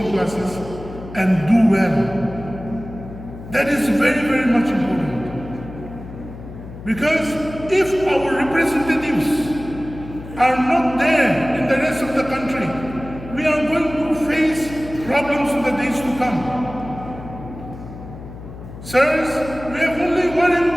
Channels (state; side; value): noise; left; hum, 13 dB below the sound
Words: classes and do well. That is very, very much important. Because if our representatives are not there in the rest of the country, we are going to face problems in the days to come. Sirs, we have only one